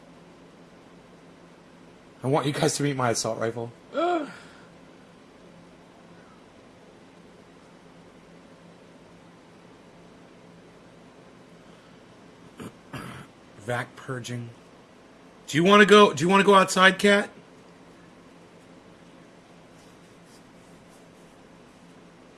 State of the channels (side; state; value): both; identical; correlation 1.00